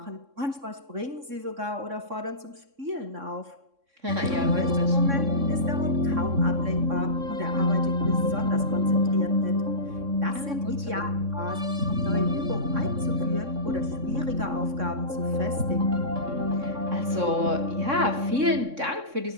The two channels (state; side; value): late; left; 3.6 ms